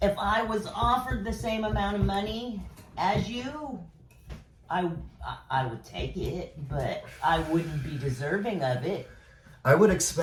If I was offered the same amount of money as you, I would take it, but I wouldn't be deserving of it. I would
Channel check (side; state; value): both; identical; correlation 1.00